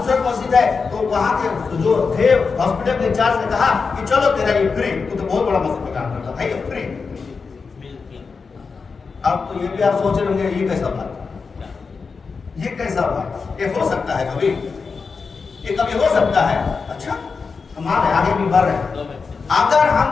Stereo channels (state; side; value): quieter; right; 4.9 dB